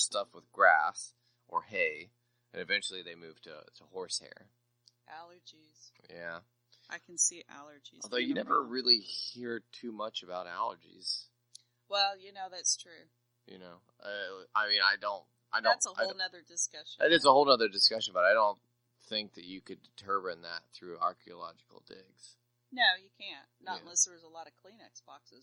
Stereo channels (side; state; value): both; identical; correlation 1.00